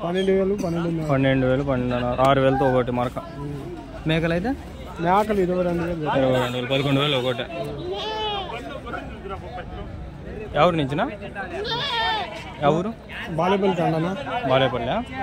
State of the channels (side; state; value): both; identical; correlation 1.00